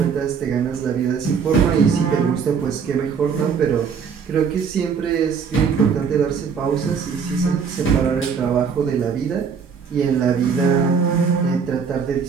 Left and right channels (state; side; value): quieter; left; 6.2 dB